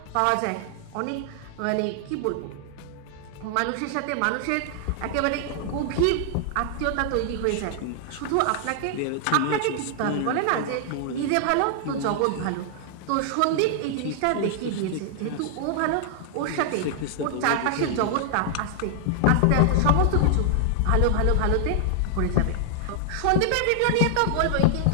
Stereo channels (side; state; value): both; different; correlation 0.00